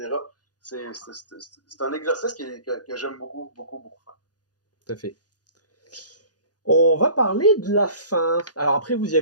C'est un exercice que j'aime beaucoup, beaucoup, beaucoup faire. Tout à fait. On va parler de la fin. Alors après, vous y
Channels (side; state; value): right; late; 0.69 ms